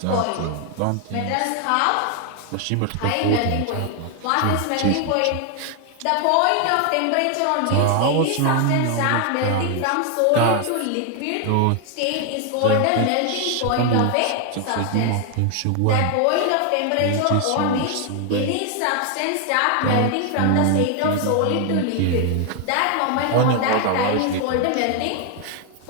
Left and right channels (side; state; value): both; different; correlation 0.00